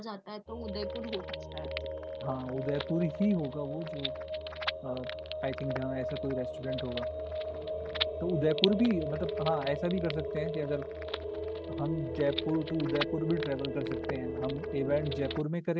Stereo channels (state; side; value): identical; both; correlation 1.00